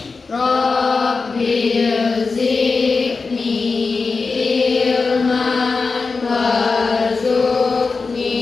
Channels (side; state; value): right; quieter; 4.4 dB